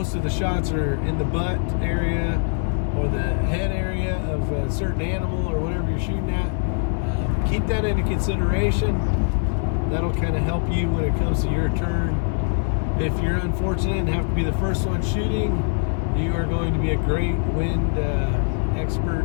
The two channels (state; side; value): silent; right; 60 dB below the other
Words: of the shots are in the butt area or the head area of a certain animal or whatever you're shooting at. Keep that into consideration. That'll kind of help you when it comes to your turn. If you're unfortunate and have to be the first one shooting, you are going to be a great wind